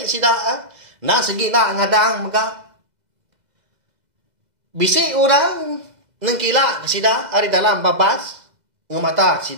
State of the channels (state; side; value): late; left; 2.0 ms